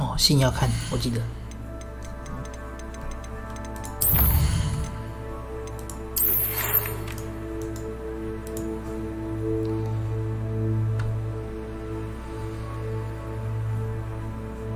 信要看，我记得。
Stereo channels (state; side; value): identical; both; correlation 1.00